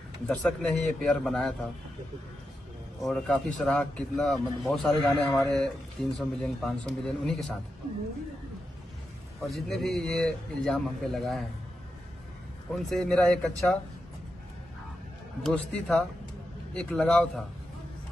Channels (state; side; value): normal; both; correlation 0.88